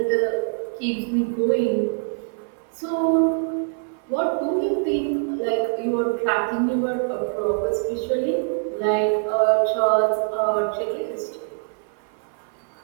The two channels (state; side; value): silent; left; 57 dB below the other